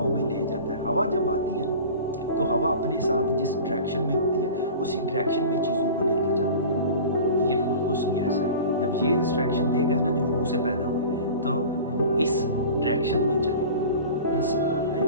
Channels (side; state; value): both; inverted; correlation -0.38